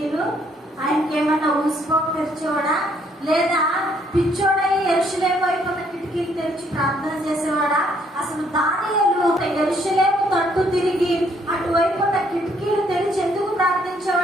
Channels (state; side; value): normal; both; correlation 0.67